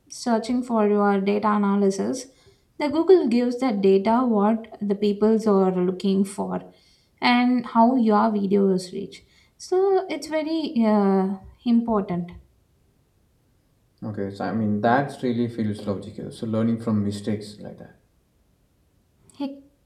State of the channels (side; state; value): both; identical; correlation 1.00